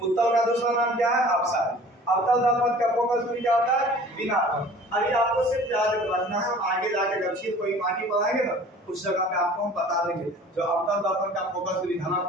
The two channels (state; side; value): normal; both; correlation 0.46